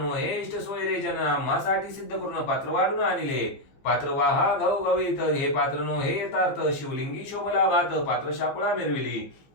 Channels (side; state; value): right; late; 15 ms